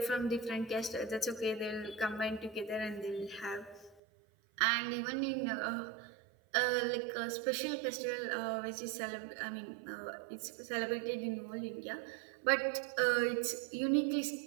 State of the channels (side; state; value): left; drops out; at 4.0 s